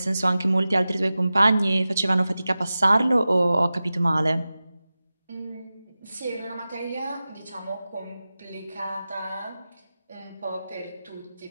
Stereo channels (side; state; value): both; inverted; correlation -0.95